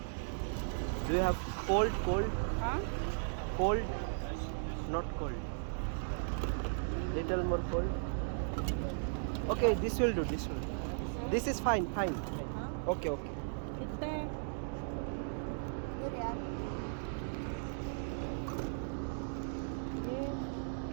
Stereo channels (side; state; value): left; silent; digital silence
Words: Do you have cold? ها Cold? Not cold. Little more cold. Okay, this will do. This will. This is fine. Okay. कितने ये रियाल ये